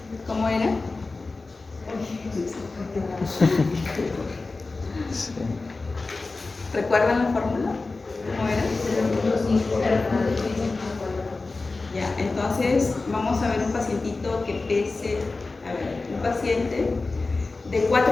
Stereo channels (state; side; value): quieter; right; 3.6 dB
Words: ¿Cómo era? Sí. ¿Recuerdan la fórmula? ¿Cómo era? Ya, entonces vamos a ver un pacientito que pese, un paciente de